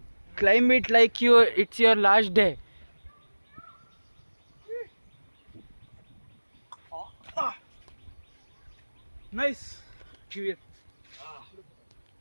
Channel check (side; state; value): both; inverted; correlation -1.00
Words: Climb it like it's your last day. Nice. Give it.